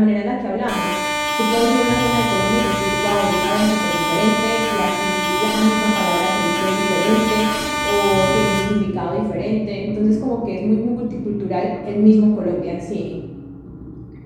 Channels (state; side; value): identical; both; correlation 1.00